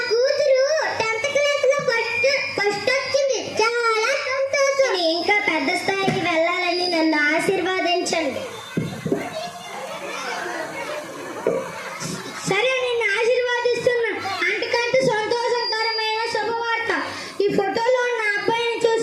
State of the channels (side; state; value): both; identical; correlation 1.00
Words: ఆశీర్వాదించండి. సరే, నిన్ను ఆశీర్వాదిస్తున్నా. అంతకంటే సంతోషకరమైన శుభవార్త. ఈ ఫోటోలో ఉన్న అబ్బాయిని